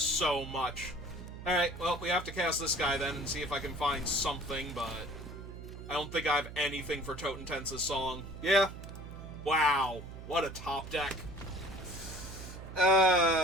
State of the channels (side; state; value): right; noise; hum, 12 dB below the sound